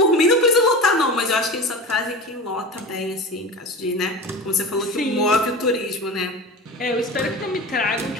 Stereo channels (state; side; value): normal; both; correlation 0.30